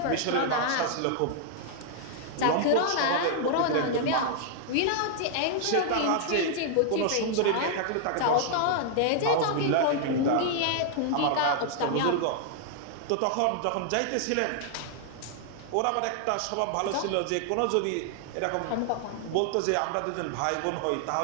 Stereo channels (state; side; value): different; both; correlation 0.00